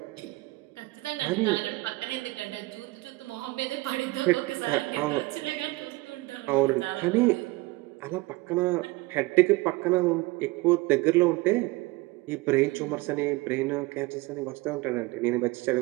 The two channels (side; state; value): left; quieter; 21.9 dB